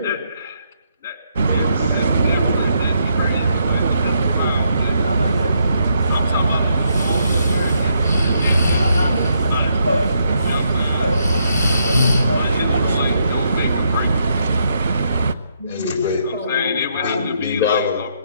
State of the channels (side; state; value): both; inverted; correlation -0.76